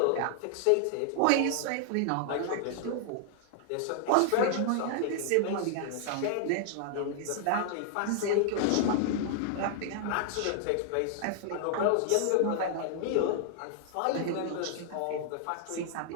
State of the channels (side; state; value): both; different; correlation 0.00